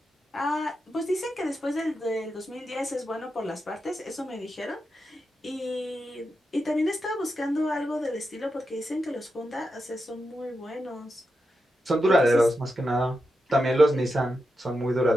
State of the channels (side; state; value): both; normal; correlation 0.88